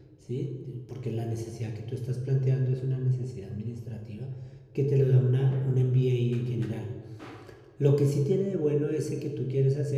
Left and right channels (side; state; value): both; identical; correlation 1.00